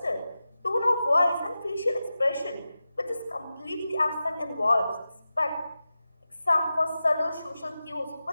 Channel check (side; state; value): both; inverted; correlation -0.93